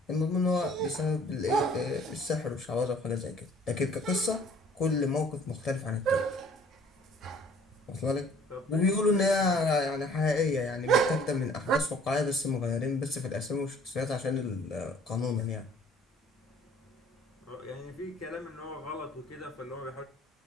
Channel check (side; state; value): both; normal; correlation 0.55